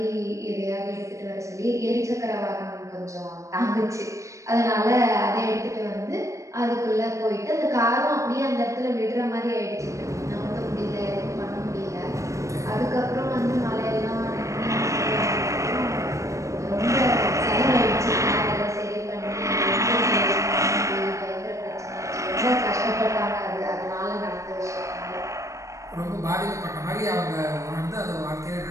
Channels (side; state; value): left; late; 0.15 ms